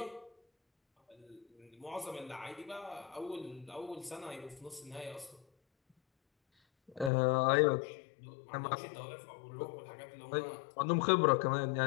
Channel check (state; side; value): drops out; right; at 7.1 s